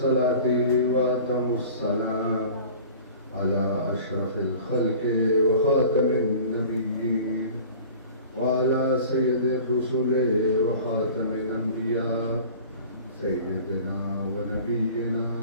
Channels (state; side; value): inverted; both; correlation -0.43